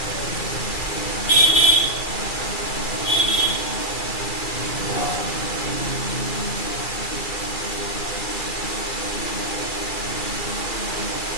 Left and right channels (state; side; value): late; right; 2.3 ms